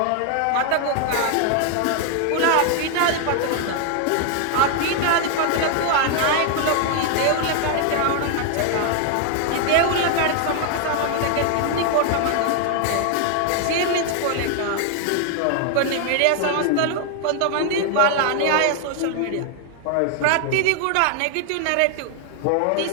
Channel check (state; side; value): different; both; correlation 0.00